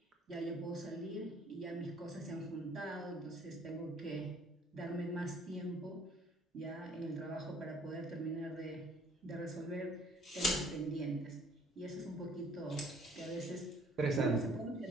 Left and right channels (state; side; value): normal; both; correlation 0.58